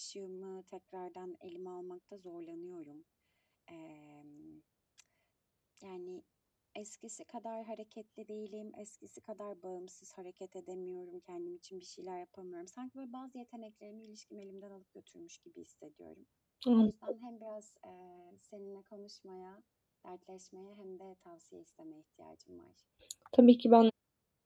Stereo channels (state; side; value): identical; both; correlation 1.00